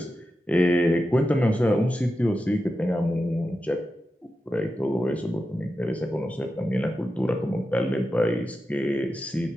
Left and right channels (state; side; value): normal; both; correlation 0.90